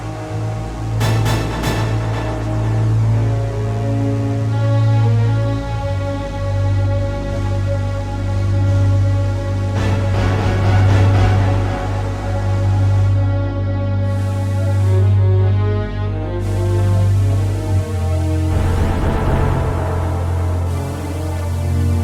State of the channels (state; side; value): identical; both; correlation 1.00